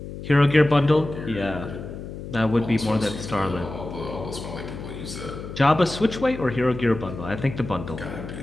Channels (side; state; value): left; noise; hum, 10 dB below the sound